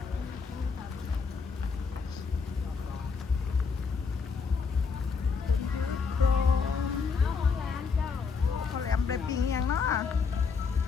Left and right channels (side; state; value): right; quieter; 5.3 dB